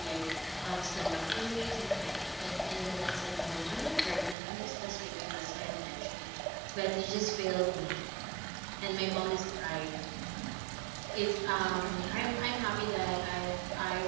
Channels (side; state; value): left; drops out; at 4.4 s